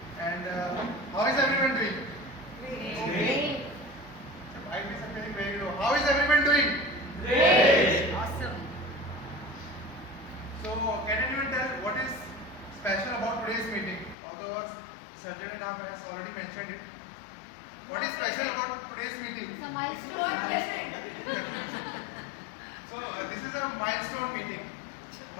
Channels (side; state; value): right; drops out; at 14.2 s